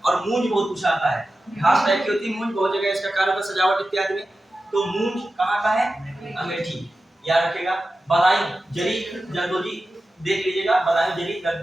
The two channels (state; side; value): normal; both; correlation 0.93